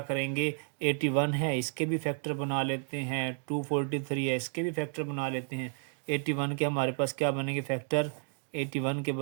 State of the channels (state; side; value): silent; left; 57 dB below the other